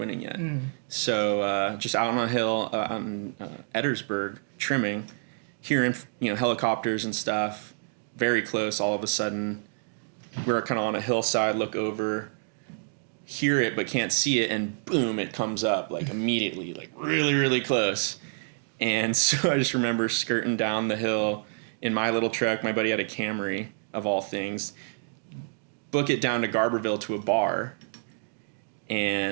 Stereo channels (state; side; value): silent; left; digital silence